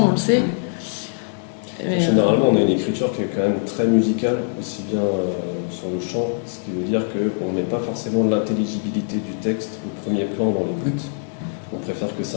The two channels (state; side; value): silent; right; 64 dB below the other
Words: on le sait. Mais généralement on a une écriture qui est quand même très musicale, aussi bien sur le chant, ce qui veut dire qu'on ne met pas forcément l'intelligibilité du texte au premier plan dans l'écoute. On préfère que